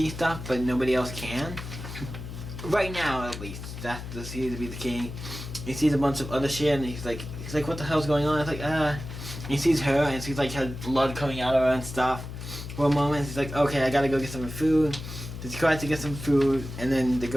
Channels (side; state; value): left; noise; hum, 10 dB below the sound